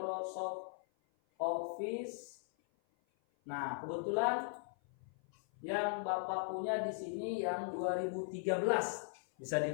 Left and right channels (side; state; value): right; silent; 52 dB below the other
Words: Office. Nah, kebetulan yang Bapak punya di sini yang 2013 bisa